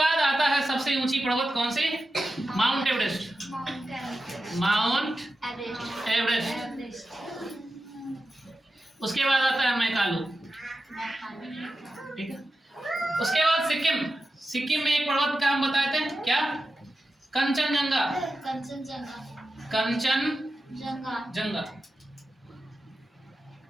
आता है सबसे ऊंची पर्वत कौन सी? Mount Everest, Mount Everest. उसके बाद आता है मैकालू, ठीक है। उसके बाद सिक्किम, सिक्किम में एक पर्वत का हम बताए थे क्या? कंचनजंगा, कंचनजंगा।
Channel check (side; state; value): both; normal; correlation 0.92